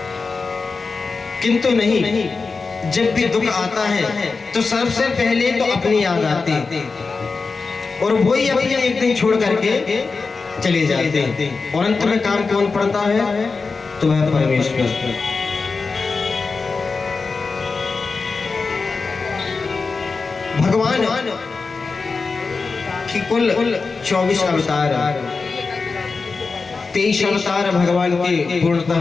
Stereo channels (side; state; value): right; quieter; 4.3 dB